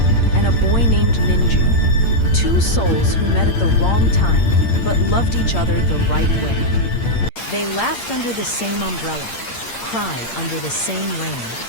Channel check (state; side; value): late; right; 8.7 ms